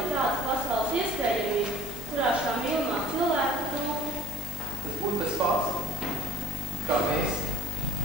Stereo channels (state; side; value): noise; left; hiss, 15 dB below the sound